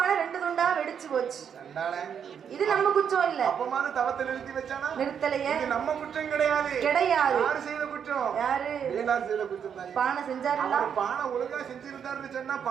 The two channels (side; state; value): left; quieter; 7.8 dB